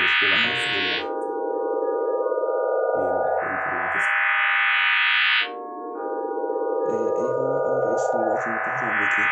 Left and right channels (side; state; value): both; identical; correlation 1.00